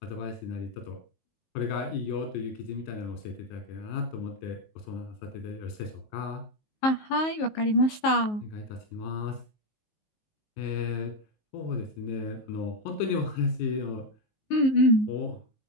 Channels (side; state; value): right; late; 19 ms